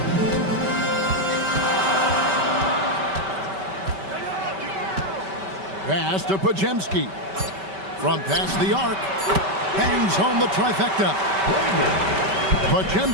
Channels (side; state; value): left; late; 5.2 ms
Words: Pass to Podziemski. From past the arc. Bangs home the trifecta.